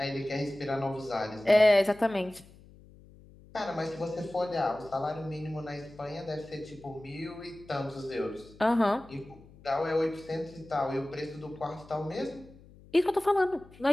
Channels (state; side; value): noise; left; hum, 23 dB below the sound